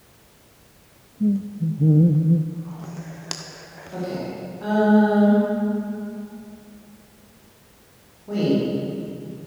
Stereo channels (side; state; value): both; identical; correlation 1.00